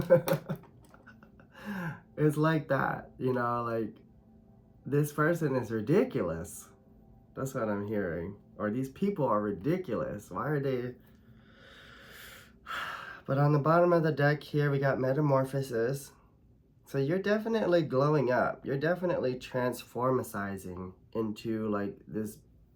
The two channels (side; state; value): both; identical; correlation 1.00